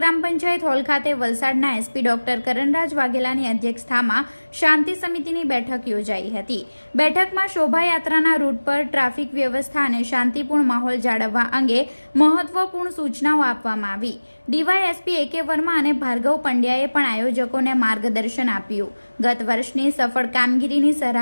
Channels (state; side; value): inverted; both; correlation -1.00